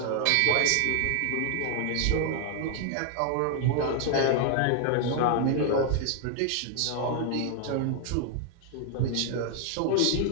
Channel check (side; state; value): both; different; correlation 0.00